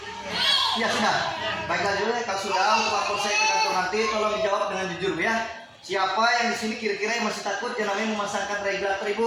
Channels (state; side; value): identical; both; correlation 1.00